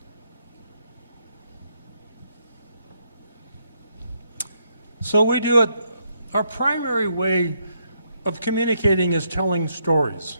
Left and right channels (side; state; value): both; inverted; correlation -0.76